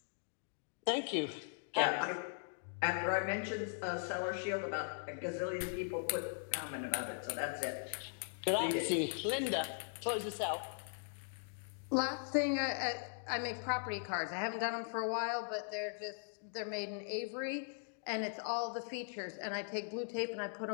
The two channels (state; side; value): silent; right; digital silence